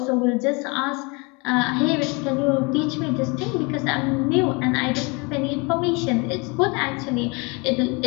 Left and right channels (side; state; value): right; quieter; 29.4 dB